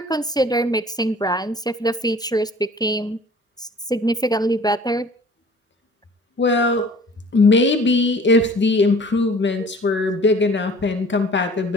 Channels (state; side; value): normal; both; correlation 0.49